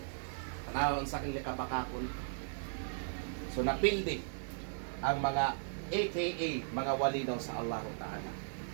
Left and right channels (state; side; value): silent; left; 53 dB below the other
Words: unsa kang likabakakon. So napildi ang mga AKA mga wali daw sa Allah Ta'ala.